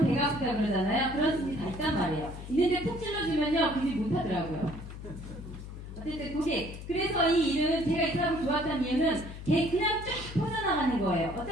배가 아프다 그러잖아요. 그런 심리 다 있단 말이에요. 있는데 푹 찔러주면요, 그 일 못하더라고요. 어쨌든 고객. 그래서 이 일은 제가 이 사람을 좋았던 이유는 그냥 쫙 퍼져나가는 거예요.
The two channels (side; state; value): left; noise; hum, 11 dB below the sound